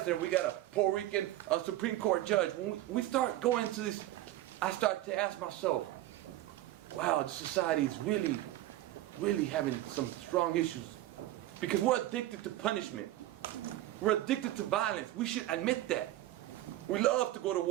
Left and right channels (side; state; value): left; quieter; 15.1 dB